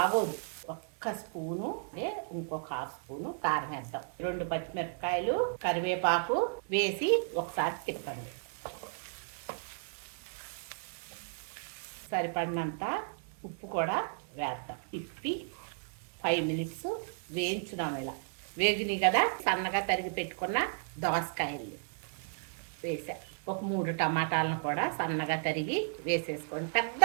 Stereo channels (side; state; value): left; silent; digital silence